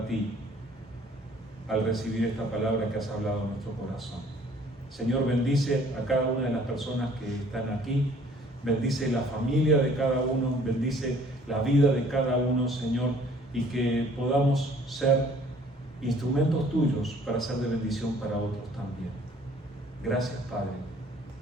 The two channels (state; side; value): normal; both; correlation 0.56